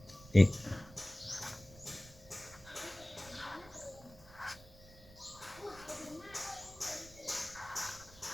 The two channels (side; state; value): right; noise; rumble, 21 dB below the sound